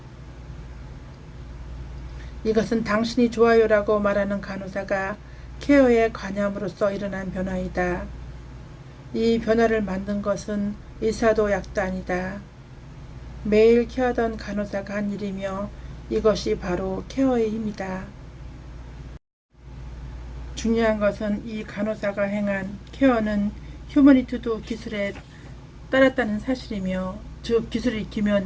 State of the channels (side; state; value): both; identical; correlation 1.00